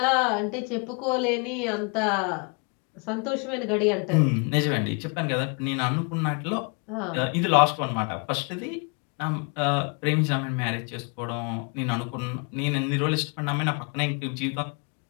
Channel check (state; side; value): quieter; right; 34.6 dB